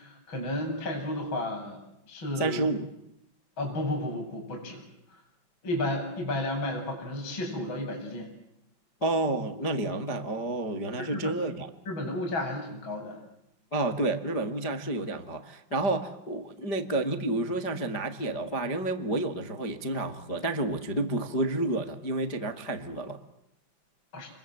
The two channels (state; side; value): late; right; 5.1 ms